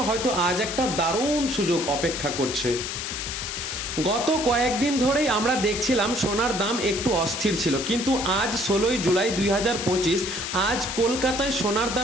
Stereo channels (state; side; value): noise; left; hiss, 5 dB below the sound